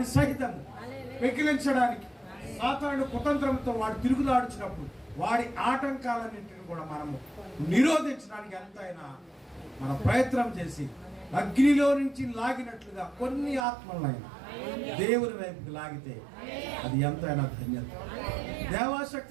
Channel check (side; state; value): left; drops out; at 13.7 s